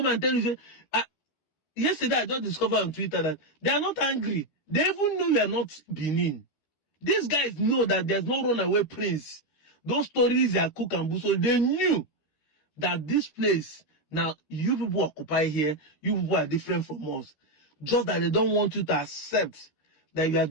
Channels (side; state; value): right; late; 13 ms